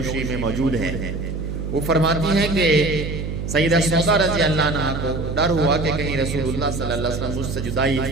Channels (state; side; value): noise; right; hum, 4 dB below the sound